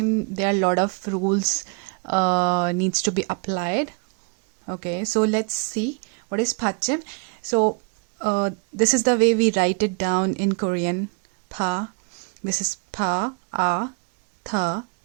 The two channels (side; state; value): left; quieter; 35.1 dB